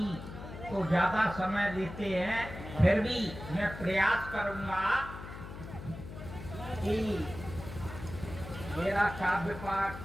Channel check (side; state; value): left; noise; hum, 11 dB below the sound